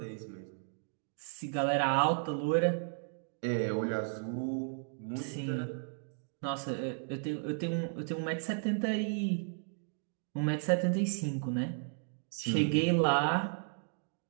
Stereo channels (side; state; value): left; silent; 55 dB below the other